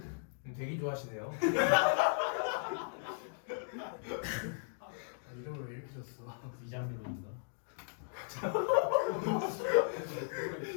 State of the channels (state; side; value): silent; right; digital silence